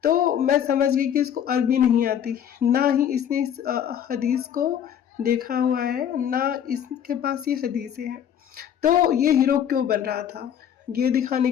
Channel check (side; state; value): right; quieter; 9.2 dB